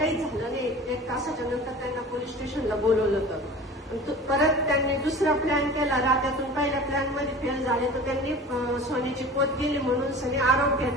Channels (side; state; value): both; normal; correlation 0.38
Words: झालं नाही. 1 तासाच्या नंतर त्यांना पोलीस स्टेशनला बोलवलं होतं. परत त्यांनी दुसरा प्लॅन केला. रात्यातून पहिल्या प्लॅन मध्ये फेल झाले तर त्यांनी सोन्याची पोत गेली म्हणून सगळे आरोप